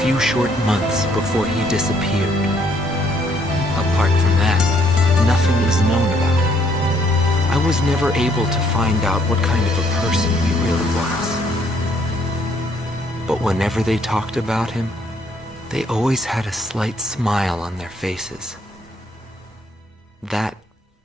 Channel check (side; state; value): both; normal; correlation 0.67